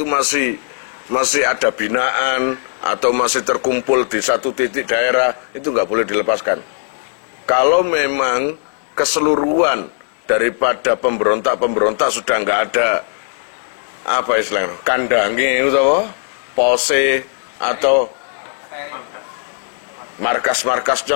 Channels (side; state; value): right; silent; 67 dB below the other